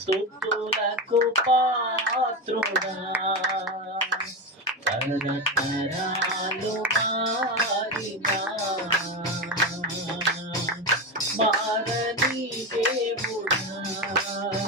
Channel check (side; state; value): both; normal; correlation 0.17